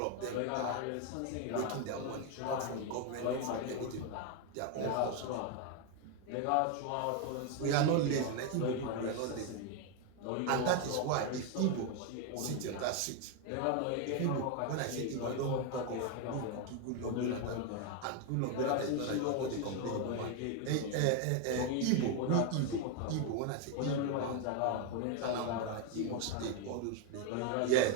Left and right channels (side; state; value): both; different; correlation 0.01